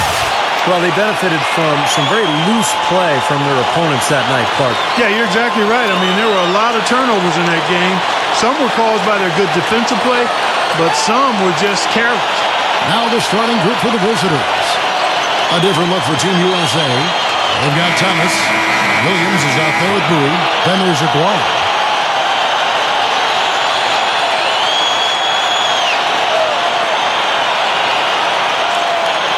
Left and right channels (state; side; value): identical; both; correlation 1.00